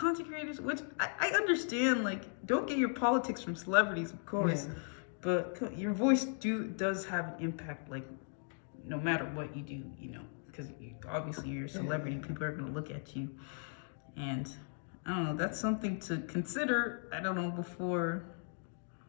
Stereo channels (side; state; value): right; silent; 53 dB below the other